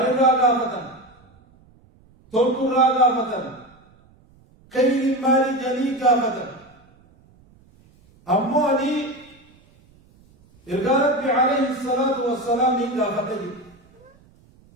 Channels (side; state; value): right; noise; rumble, 30 dB below the sound